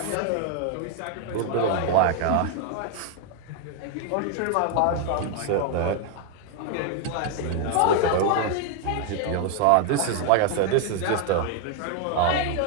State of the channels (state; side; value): different; both; correlation 0.00